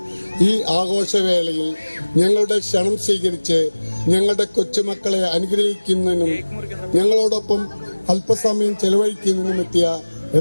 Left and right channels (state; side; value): inverted; both; correlation -1.00